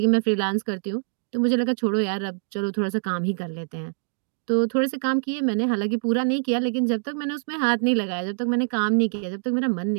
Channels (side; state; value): left; silent; digital silence